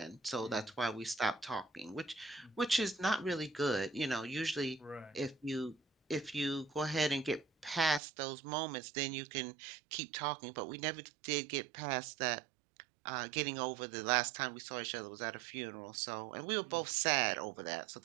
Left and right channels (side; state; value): left; drops out; at 8.0 s